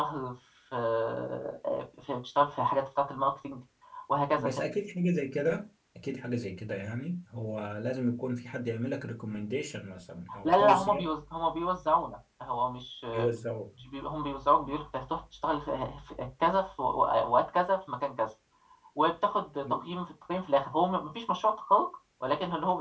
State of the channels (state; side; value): identical; both; correlation 1.00